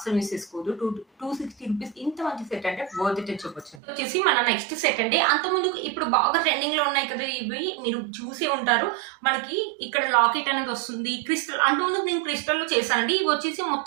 మిస్ చేసుకోదు. 260 రూపీస్ ఇంత మంచి సెట్ అంటే వర్త్ ఇట్ అని చెప్పొచ్చు. వచ్చేసి మన నెక్స్ట్ సెట్ అండి. అంత ముందు ఇప్పుడు బాగా ట్రెండింగ్ లో ఉన్నాయి కదా ఇవి, మీరు చూసే ఉంటారు. మనకి ఇక్కడ లాకెట్ అనేది వస్తుంది. క్రిస్టల్ అంత ముందు నేను క్రిస్టల్ లో చేశానండి. ఇవి వచ్చేసి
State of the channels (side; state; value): left; drops out; at 3.8 s